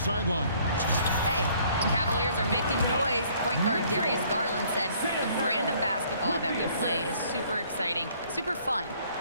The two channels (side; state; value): both; inverted; correlation -0.60